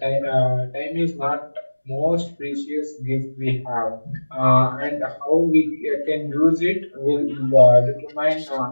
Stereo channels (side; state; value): both; inverted; correlation -1.00